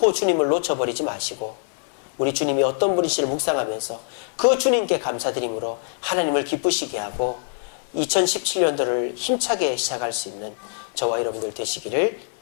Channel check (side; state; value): right; silent; 63 dB below the other